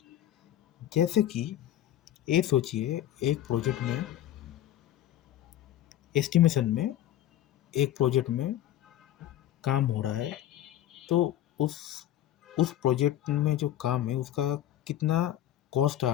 जैसे कि ये सोचिए, एक प्रोजेक्ट में एस्टिमेशन में एक प्रोजेक्ट में काम हो रहा है, तो उस प्रोजेक्ट में जो काम है उसका कितना कॉस्ट आ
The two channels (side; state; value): right; quieter; 12.4 dB